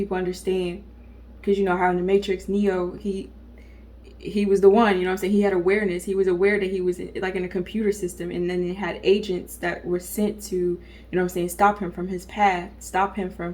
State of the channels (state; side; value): identical; both; correlation 1.00